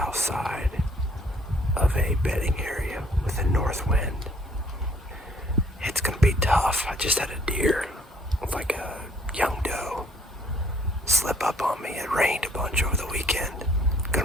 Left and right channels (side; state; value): both; normal; correlation 0.62